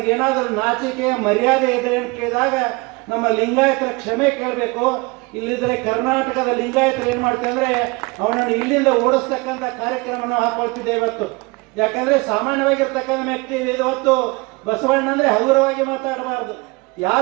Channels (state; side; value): quieter; left; 25.9 dB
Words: ನಾಚಿಕೆ ಮರ್ಯಾದೆ ಇದೆ ಅಂತ ಕೇಳಿದಾಗ ನಮ್ಮ ಲಿಂಗಾಯತರ ಕ್ಷಮೆ ಕೇಳಬೇಕು. ಇಲ್ಲಿದ್ರೆ ಕರ್ನಾಟಕದ ಲಿಂಗಾಯತರು ಏನು ಮಾಡ್ತಾರೆ ಅಂದರೆ ಅವನನ್ನು ಇಲ್ಲಿಂದ ಓಡಿಸ್ತಕ್ಕಂಥ ಕಾರ್ಯಕ್ರಮವನ್ನು ಹಾಕೊಳ್ತಿದ್ದೇವೆ ಇವತ್ತು. ಯಾಕಂದರೆ ಸಾಮಾನ್ಯವಾಗಿರ್ತಕ್ಕಂಥ ವ್ಯಕ್ತಿ ಇವತ್ತು ಬಸವಣ್ಣ ಅಂದರೆ ಹಗುರವಾಗಿ ಮಾತಾಡಬಾರ್ದು.